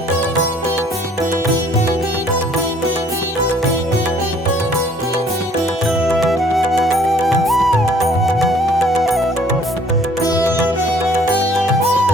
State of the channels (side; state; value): both; normal; correlation 0.58